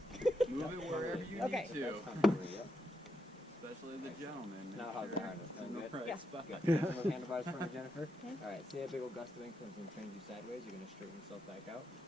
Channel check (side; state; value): both; normal; correlation 0.82